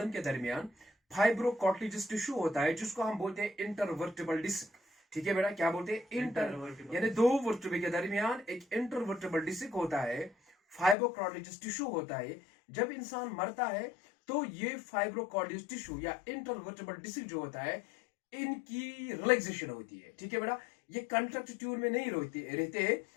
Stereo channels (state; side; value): drops out; right; at 11.0 s